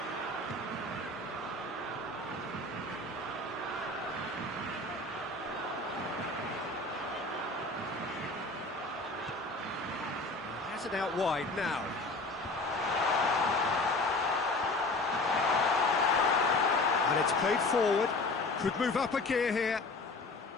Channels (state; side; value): quieter; right; 3.0 dB